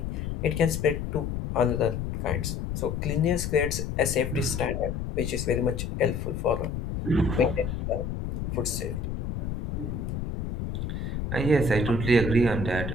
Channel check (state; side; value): noise; left; rumble, 4 dB below the sound